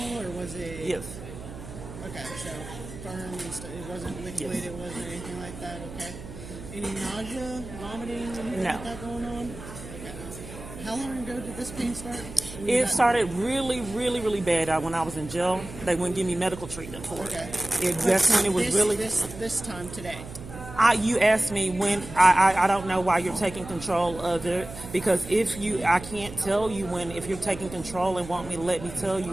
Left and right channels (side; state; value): right; noise; hum, 13 dB below the sound